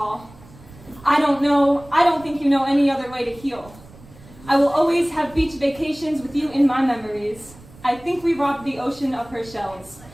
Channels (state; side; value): noise; right; rumble, 22 dB below the sound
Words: I don't think you know any other way to heal. I will always have beach vacations with you in my memories. I think we robbed the ocean of her shells.